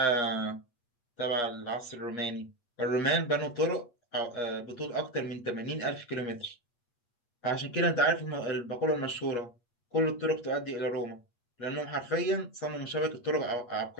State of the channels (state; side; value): late; right; 8.4 ms